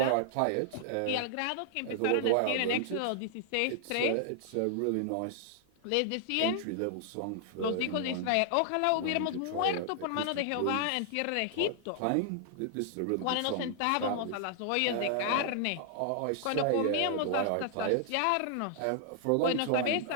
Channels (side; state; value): both; different; correlation 0.00